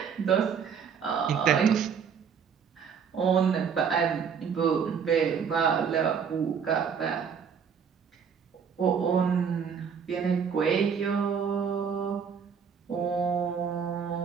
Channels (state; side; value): quieter; left; 6.9 dB